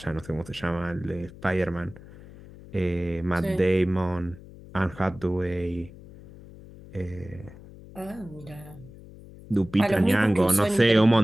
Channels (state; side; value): noise; left; hum, 18 dB below the sound